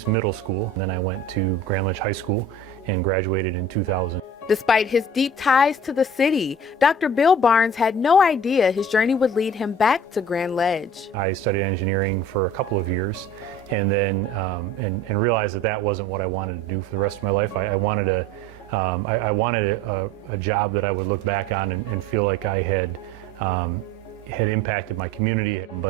Middle School, and then I went to Grand Ledge High School and graduated in 2000. Despite his deep ties to the city, Dr. Bill Barnes had no idea his journey would lead him back to Grand Ledge. I studied engineering for a couple of years, and then and realized that that wasn't what I wanted to do for the rest of my life. I wanted a job that I would look back on and feel like I had impacted my community.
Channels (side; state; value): both; normal; correlation 0.43